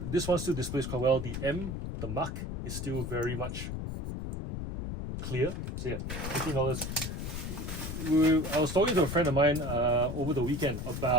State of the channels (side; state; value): left; noise; rumble, 5 dB below the sound